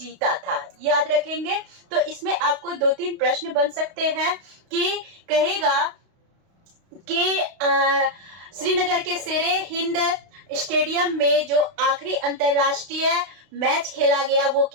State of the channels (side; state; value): left; late; 32 ms